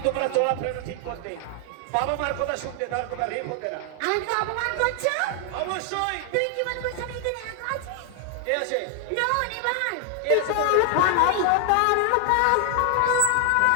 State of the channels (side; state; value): both; different; correlation 0.00